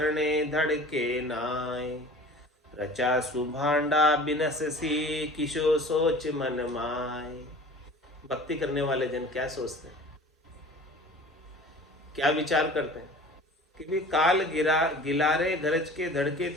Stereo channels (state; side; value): normal; both; correlation 0.43